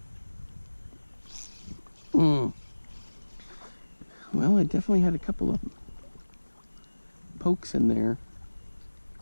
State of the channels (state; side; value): inverted; both; correlation -1.00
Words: Well, I definitely had a couple of pokes in there.